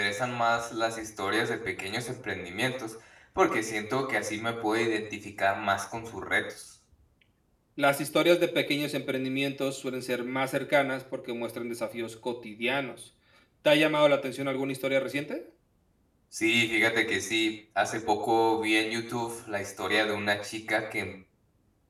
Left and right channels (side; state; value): both; identical; correlation 1.00